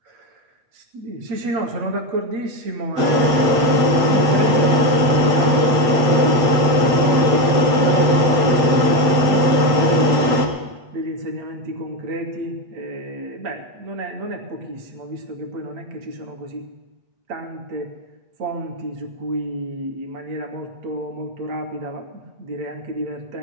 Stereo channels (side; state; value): left; late; 8.3 ms